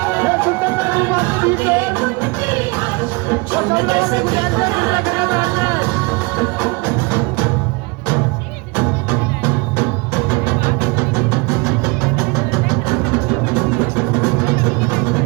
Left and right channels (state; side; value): quieter; left; 27.5 dB